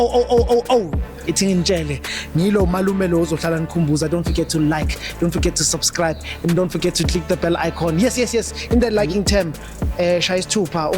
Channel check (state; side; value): identical; both; correlation 1.00